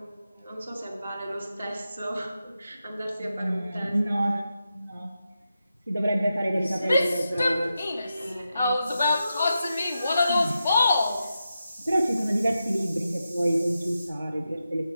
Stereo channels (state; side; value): inverted; both; correlation -0.88